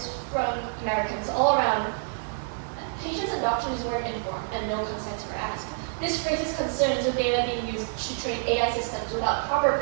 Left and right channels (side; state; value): left; silent; digital silence